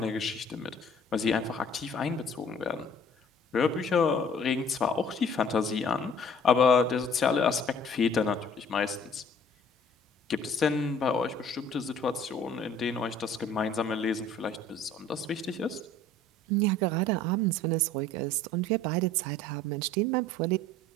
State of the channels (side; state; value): both; normal; correlation 0.53